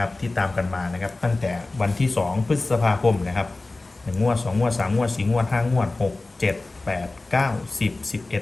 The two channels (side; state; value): right; quieter; 3.2 dB